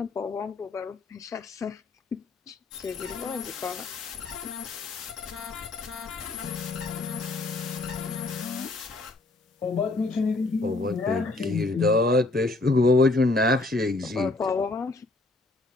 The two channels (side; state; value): right; quieter; 3.0 dB